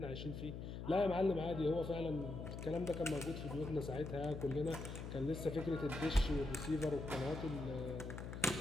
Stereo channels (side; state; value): left; noise; hum, 7 dB below the sound